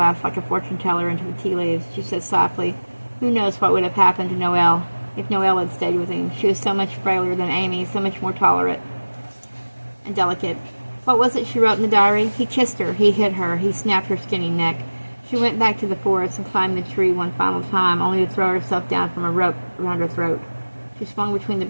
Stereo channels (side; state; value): both; inverted; correlation -1.00